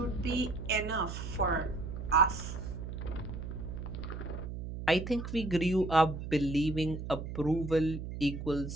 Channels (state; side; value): noise; right; hum, 7 dB below the sound